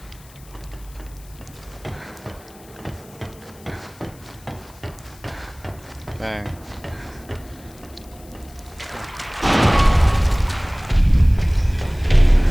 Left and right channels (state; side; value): noise; left; hiss, 24 dB below the sound